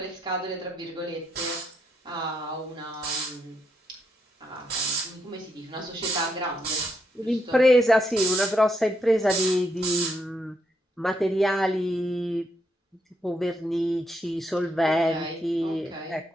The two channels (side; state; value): both; normal; correlation 0.78